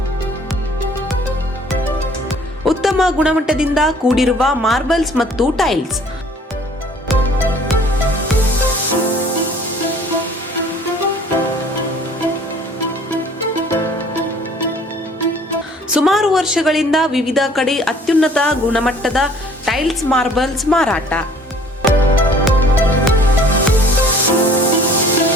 ಉತ್ತಮ ಗುಣಮಟ್ಟದಿಂದ ಕೂಡಿರುವ ಮಾರ್ಬಲ್ಸ್ ಮತ್ತು ಟೈಲ್ಸ್. ಸುಮಾರು ವರ್ಷಗಳಿಂದ ವಿವಿಧ ಕಡೆ ಅತ್ಯುನ್ನತ ಗುಣಮಟ್ಟದ ಟೈಲ್ಸ್ ಮಾರ್ಬಲ್ಸ್ ಮಾರಾಟ.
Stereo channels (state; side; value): normal; both; correlation 0.53